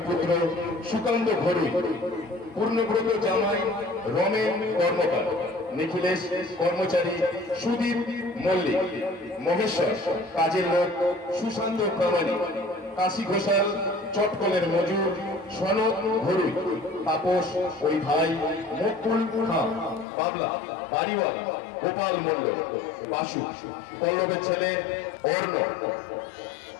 পুত্র সুকান্ত ঘরুই, পূর্ণব্রত জামাই রমেন কর্মকার, নিখিলেশ কর্মচারী সুদীপ মল্লিক, মহেশ্বর কাজের লোক সুশান্ত প্রামাণিক, কাশী ঘোষাল চটকলের মজুর সনদ ঘরুই, তাপস ওই ভাই মুকুল খান, বাবলা বাড়িওয়ালা গোপাল মন্ডল, বাসু পল্লবের ছেলে অর্ণ,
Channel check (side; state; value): right; drops out; at 20.1 s